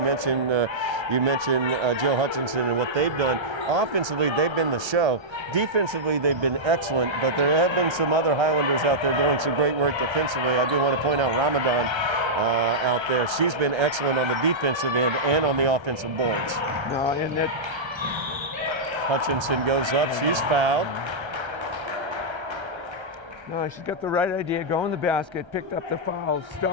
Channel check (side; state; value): left; late; 1.3 ms